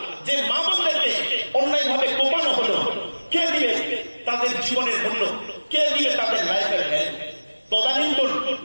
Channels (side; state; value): both; inverted; correlation -1.00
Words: যে মা বোনদেরকে অন্যায় ভাবে কোপানো হলো, কে দিবে তাদের জীবনের মূল্য? কে দিবে তাদের লাইফের হেল্প? তদানীন্তন